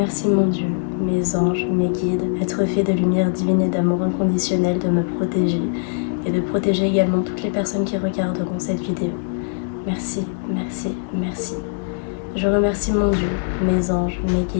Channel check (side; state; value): right; silent; 63 dB below the other